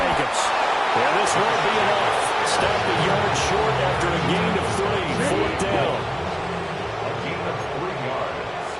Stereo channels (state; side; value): identical; both; correlation 1.00